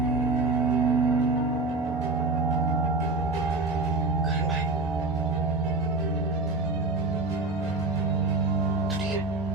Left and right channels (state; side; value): quieter; left; 3.3 dB